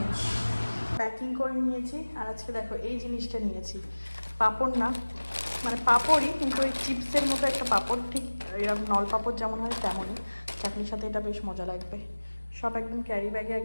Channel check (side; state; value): both; inverted; correlation -1.00